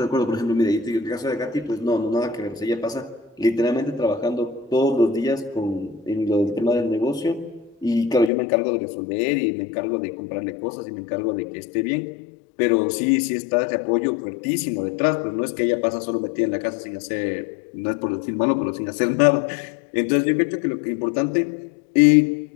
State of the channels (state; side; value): drops out; right; at 8.3 s